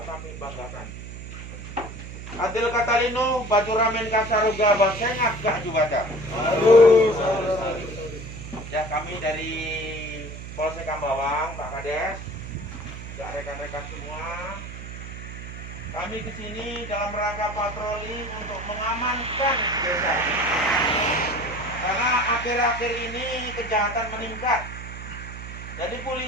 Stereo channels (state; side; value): noise; right; hum, 10 dB below the sound